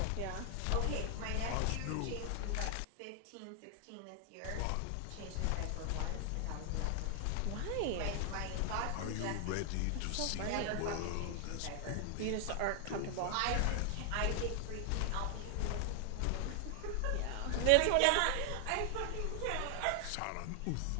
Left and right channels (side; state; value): both; different; correlation 0.00